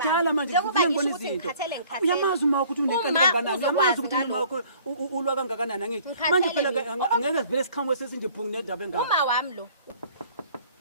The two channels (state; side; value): inverted; both; correlation -0.54